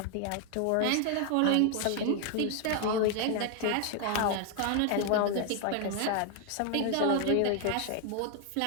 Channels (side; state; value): both; different; correlation 0.01